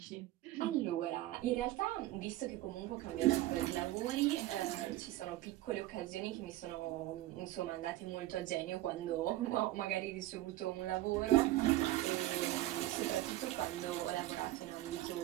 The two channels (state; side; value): quieter; left; 16.1 dB